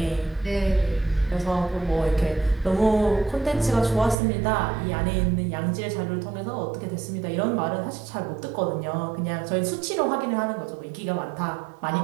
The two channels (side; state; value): left; drops out; at 4.2 s